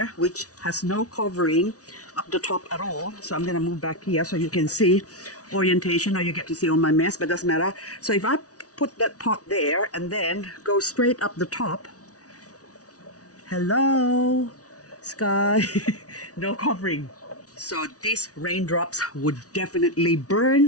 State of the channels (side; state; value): right; late; 0.67 ms